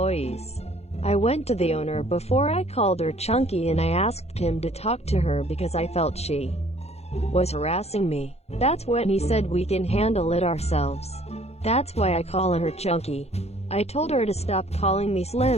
I went to the owner before I called her chunky, and I asked him to talk to her because I felt she was harassing me. That's when he said we can handle it ourselves. That's why I call her chunky. I told her to stop calling me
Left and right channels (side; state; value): right; late; 0.31 ms